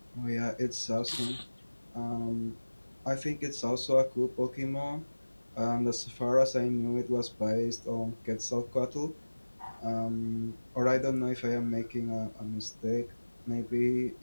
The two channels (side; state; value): both; inverted; correlation -1.00